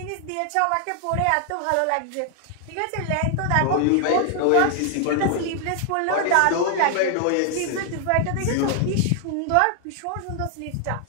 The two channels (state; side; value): different; both; correlation 0.00